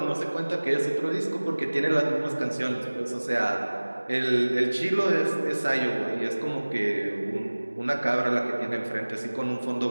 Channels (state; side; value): inverted; both; correlation -1.00